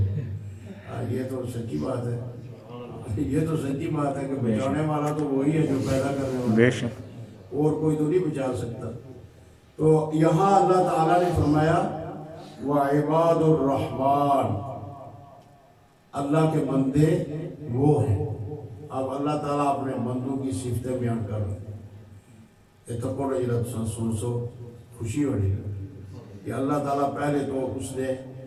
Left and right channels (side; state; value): both; identical; correlation 1.00